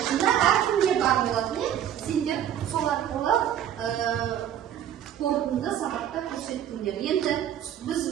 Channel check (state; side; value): quieter; left; 10.5 dB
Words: шында әркімге бар болатын, сендер сол арқылы қорытынды сабақта көрсеттіңдер. Енді біз